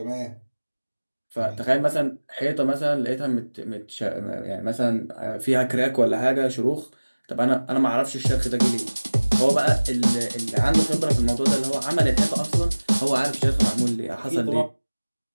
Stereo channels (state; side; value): inverted; both; correlation -1.00